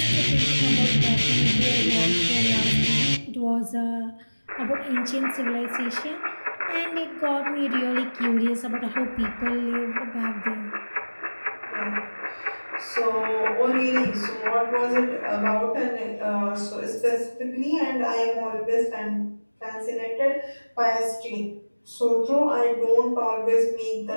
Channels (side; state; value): both; inverted; correlation -1.00